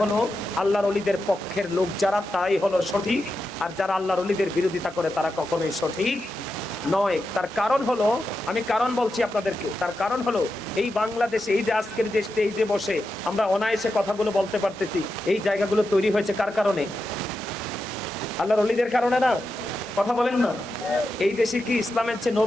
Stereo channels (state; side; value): normal; both; correlation 0.88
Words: হলো আল্লাহর ওলিদের পক্ষের লোক যারা, তাই হলো সঠিক। আর যারা আল্লাহর ওলিদের বিরোধিতা করে তারা কখনোই সঠিক নয়। তার কারণ হলো, আমি কারণ বলছি আপনাদেরকে, তার কারণ হলো এই বাংলাদেশে এই যে আজকের যে স্টেজে বসে আমরা অনায়াসে কথাগুলো বলতে পারতেছি, এই জায়গাগুলো তৈরি হয়েছে কার কারণে? আল্লাহর ওলিদের কারণে না? কথা বলেন না। এই দেশে কি ইসলামের চেয়ে